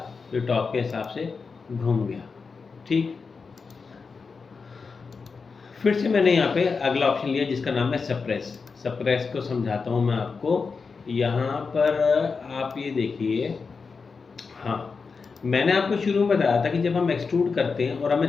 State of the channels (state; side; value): quieter; right; 4.9 dB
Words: तो टॉप के हिसाब से घूम गया। ठीक, फिर से मैंने यहाँ पे अगला ऑप्शन लिया जिसका नाम है सप्रेस। सप्रेस को समझाता हूँ मैं आपको। यहाँ पर आप ये देखिए, हाँ, मैंने आपको शुरू में बताया था कि जब हम एक्सट्रूड करते हैं और